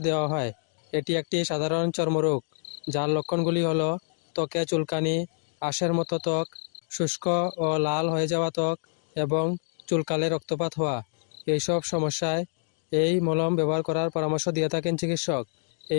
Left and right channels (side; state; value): right; silent; digital silence